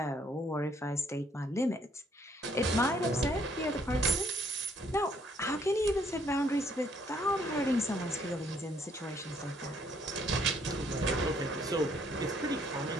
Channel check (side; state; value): both; normal; correlation 0.66